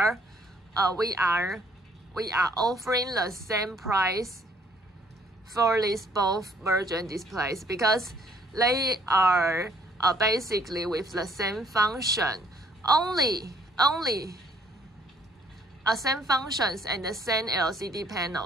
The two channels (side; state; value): both; normal; correlation 0.64